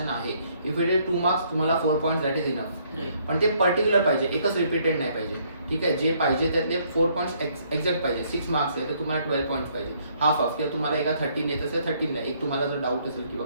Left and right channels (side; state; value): both; inverted; correlation -0.67